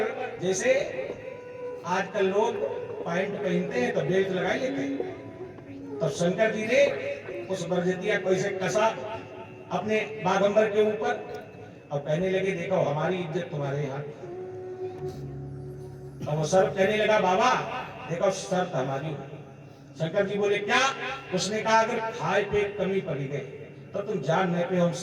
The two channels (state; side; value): identical; both; correlation 1.00